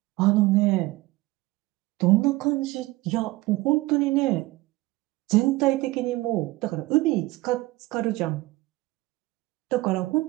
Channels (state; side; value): quieter; left; 19.7 dB